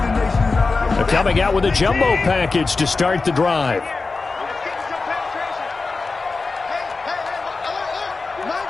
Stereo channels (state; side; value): quieter; right; 4.0 dB